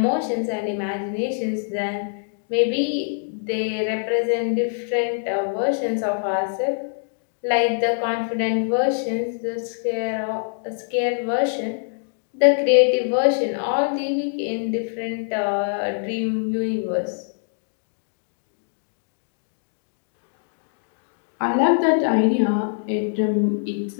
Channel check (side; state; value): right; silent; digital silence